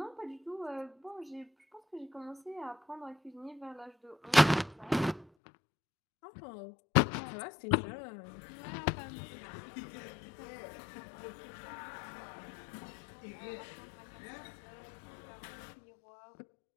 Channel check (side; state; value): right; drops out; at 5.2 s